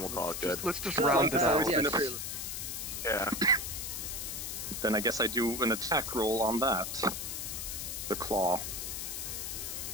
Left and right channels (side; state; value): left; noise; hiss, 5 dB below the sound